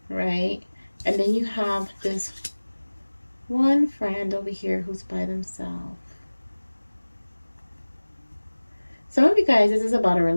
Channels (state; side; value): inverted; both; correlation -1.00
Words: right? And then you have this one friend over here who's by themselves. Some of you guys, this is about a